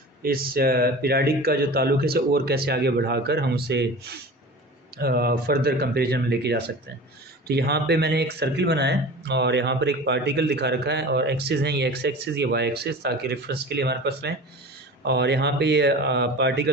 इस पीरियडिक का जो ताल्लुक है इसे और कैसे आगे बढ़ाकर हम उसे फर्दर कंपैरिजन में लेके जा सकते हैं। तो यहाँ पे मैंने एक सर्किल बनाया है और यहाँ पर एक पार्टिकल दिखा रखा है और एक्सिस हैं, ये एक्स एक्सिस, ये वाई एक्सिस, ताकि रेफरेंस के लिए हमारे पास रहें। और यहाँ पे ये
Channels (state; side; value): normal; both; correlation 0.36